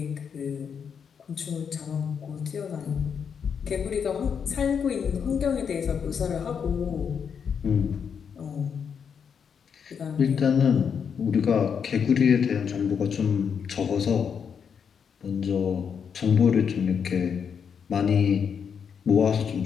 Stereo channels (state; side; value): quieter; right; 7.0 dB